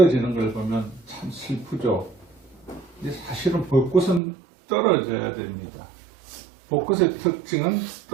걸 보면 참 슬프죠. 근데 사실은 벚꽃은 떨어져야 됩니다. 벚꽃의 특징은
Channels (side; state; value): left; drops out; at 4.2 s